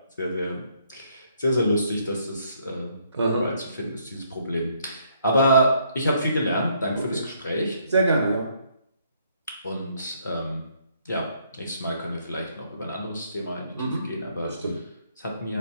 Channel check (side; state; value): both; inverted; correlation -0.69